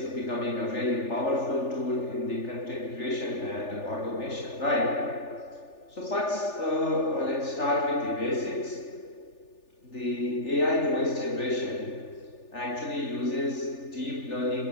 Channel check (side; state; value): right; late; 3.4 ms